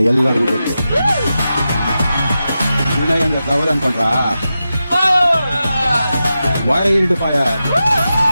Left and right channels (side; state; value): both; inverted; correlation -0.91